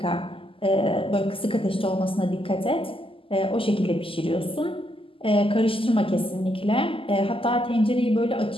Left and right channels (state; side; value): late; right; 0.26 ms